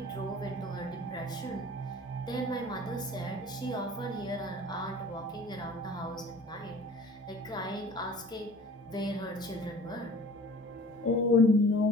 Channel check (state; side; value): normal; both; correlation 0.46